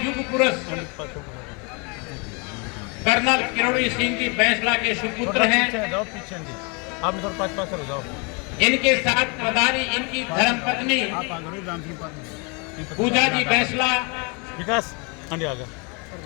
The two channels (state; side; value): quieter; right; 32.3 dB